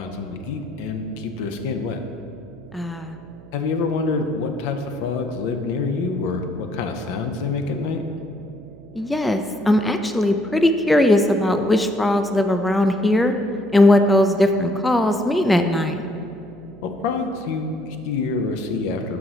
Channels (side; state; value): right; noise; hum, 21 dB below the sound